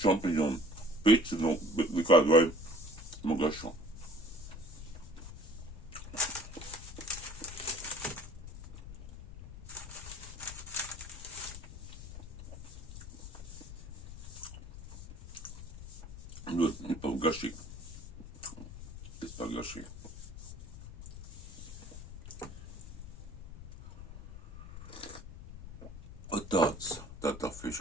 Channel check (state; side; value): noise; left; rumble, 11 dB below the sound